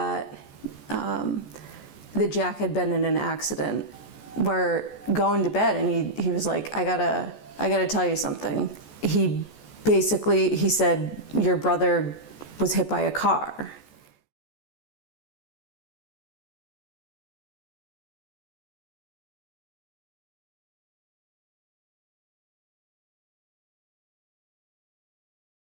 Jack had been in an accident. We're going to bed, and he was like, I gotta tell you something. He said, your brother was hit by a car.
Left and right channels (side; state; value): right; late; 14 ms